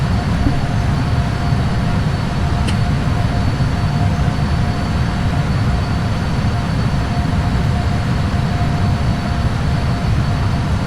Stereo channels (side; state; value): both; identical; correlation 1.00